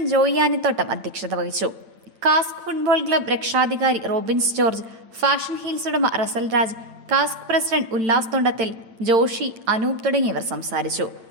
ജോയി ആനിത്തോട്ടം അധ്യക്ഷത വഹിച്ചു. കാസ്ക് ഫുട്ബോൾ ക്ലബ് രക്ഷാധികാരി റോബിൻസ് ജോർജ്, ഫാഷൻ ഹീൽസ് ഉടമ റസൽ രാജ്, കാസ്ക് പ്രസിഡന്റ് ഉല്ലാസ് തൊണ്ടത്തിൽ, ജോഷി, അനൂപ് തുടങ്ങിയവർ സംസാരിച്ചു.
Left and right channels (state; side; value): late; left; 8.9 ms